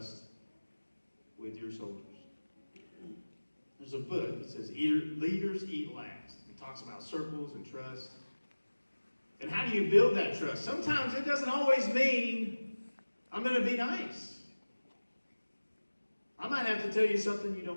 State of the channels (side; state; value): both; inverted; correlation -1.00